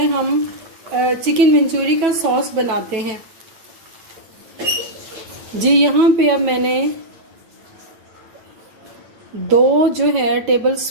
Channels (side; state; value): left; late; 9.1 ms